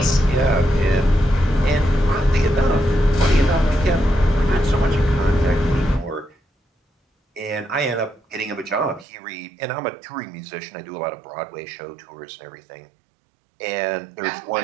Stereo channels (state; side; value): drops out; left; at 9.1 s